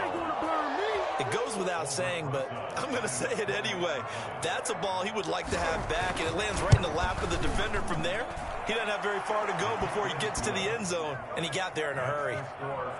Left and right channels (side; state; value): both; identical; correlation 1.00